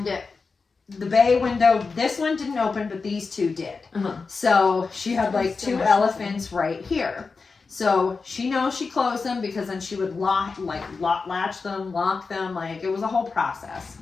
the bay window, this one didn't open, but these 2 did. So she had like 2 elephants right here. So she knows she closed them because then she would latch them, lock them, like it was a whole process.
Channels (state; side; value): quieter; right; 4.5 dB